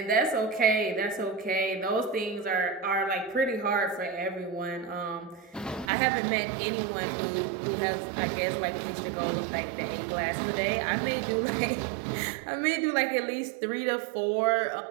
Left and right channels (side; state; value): left; drops out; at 5.9 s